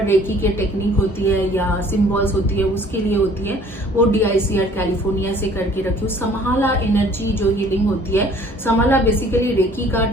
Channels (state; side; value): normal; both; correlation 0.54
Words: रेकी के टेक्निक होती है या सिंबल्स होती है उसके लिए होती है, वो DICR कैलिफोर्निया से करके रखी हूँ। समाला एनर्जी जो हीलिंग होती है, समाला बेसिकली रेकी का